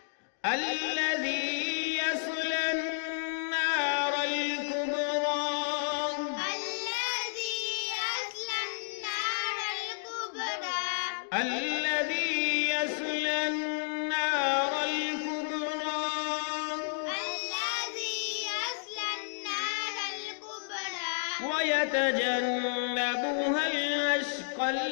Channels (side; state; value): right; silent; digital silence